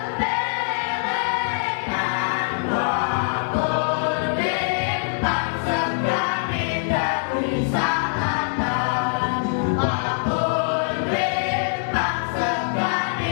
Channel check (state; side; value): silent; right; digital silence